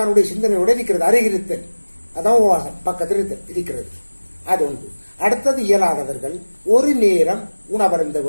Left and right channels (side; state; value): both; inverted; correlation -1.00